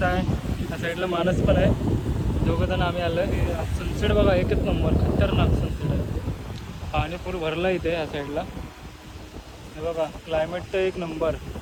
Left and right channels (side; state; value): both; identical; correlation 1.00